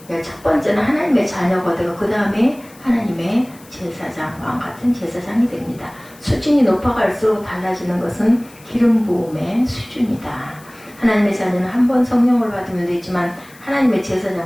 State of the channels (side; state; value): left; noise; hiss, 24 dB below the sound